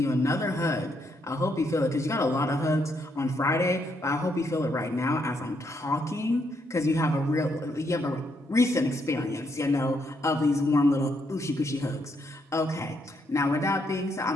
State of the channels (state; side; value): normal; both; correlation 0.76